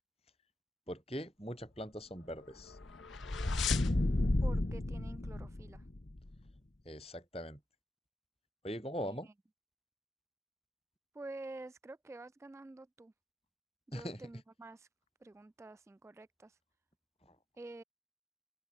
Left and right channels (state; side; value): normal; both; correlation 0.88